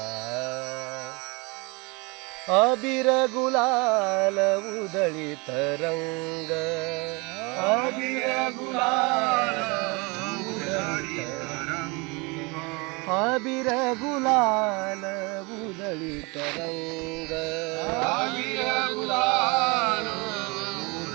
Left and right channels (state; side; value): quieter; left; 28.1 dB